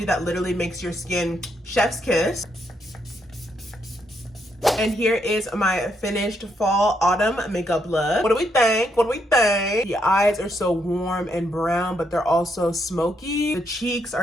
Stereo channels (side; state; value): both; normal; correlation 0.77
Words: that literally makes your skin chef's kiss. And here is my finished fall autumn makeup look. What do we think? What do we think? The eyes are so warm and brown, but they're also smoky. The cheeks